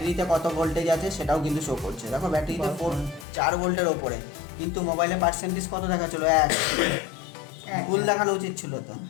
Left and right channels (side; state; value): right; drops out; at 3.2 s